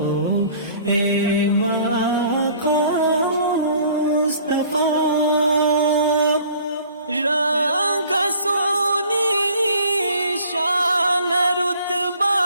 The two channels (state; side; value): inverted; both; correlation -0.52